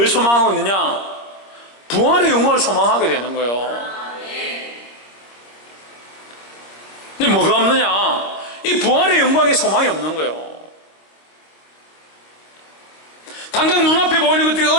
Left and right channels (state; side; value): late; right; 25 ms